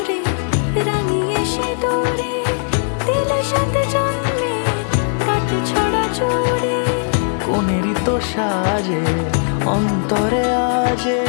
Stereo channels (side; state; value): right; silent; 67 dB below the other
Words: রাঙিয়ে সে দূরে দিলে 7 জন্মের কাট ছড়া জুড়ে। কোনেরই তো সাজে অন্তরে আজে,